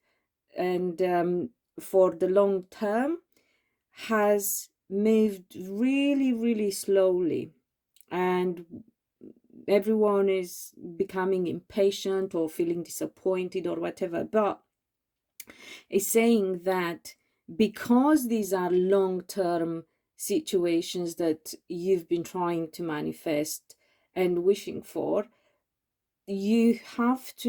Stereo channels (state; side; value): identical; both; correlation 1.00